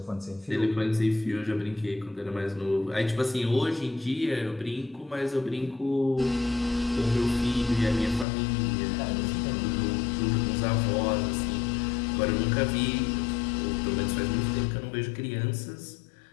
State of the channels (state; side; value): drops out; right; at 8.2 s